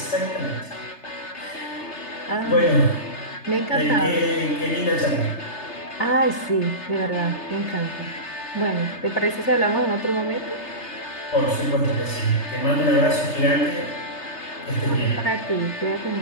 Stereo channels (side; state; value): right; late; 3.3 ms